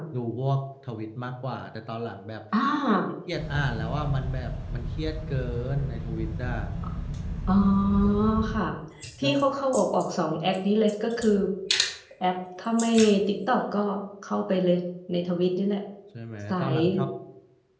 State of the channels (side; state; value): both; identical; correlation 1.00